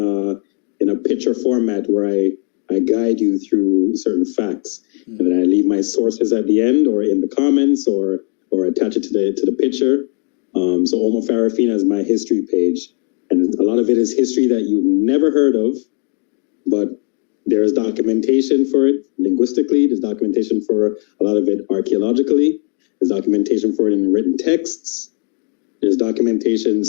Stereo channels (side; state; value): right; quieter; 39.6 dB